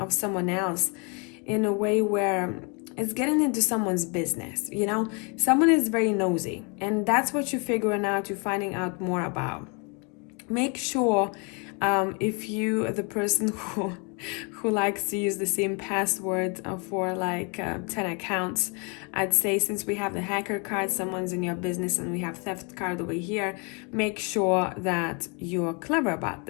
someone else in a way where it's getting into someone's business, you know? Someone is very nosy, and that's what you're figuring out, you're finding out more about. Make sure if you, the person who likes to use the same password for like 10 accounts, I'd say, since we have the hacker card, someone's in your business, and we have theft card over here, make sure that you're clever about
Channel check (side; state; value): right; quieter; 33.8 dB